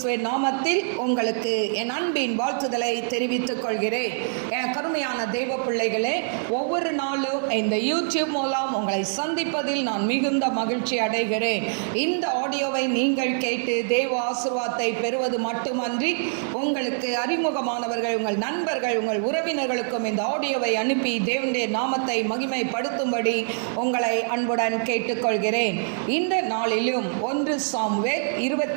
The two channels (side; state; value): left; silent; digital silence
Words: நாமத்தில் உங்களுக்கு என் அன்பின் வாழ்த்துதலை தெரிவித்துக் கொள்கிறேன். என் கருமையான தேவ பிள்ளைகளே, ஒவ்வொரு நாளும் இந்த யூடியூப் மூலம் உங்களை சந்திப்பதில் நான் மிகுந்த மகிழ்ச்சி அடைகிறேன். இந்த ஆடியோவை நீங்கள் கேட்டு தேவ ஆசீர்வாதத்தை பெறுவது மட்டுமன்றி, உங்களுக்கு அறிமுகமானவர்கள், உங்கள் நண்பர்கள், உங்கள் உறவினர்களுக்கும் இந்த ஆடியோவை அனுப்பி தேவனுடைய நாமத்தை மகிமைப்படுத்தும்படி உங்களை அன்புடன் கேட்டுக்கொள்கிறேன். இந்த நாளிலும் 1 சாமுவேல்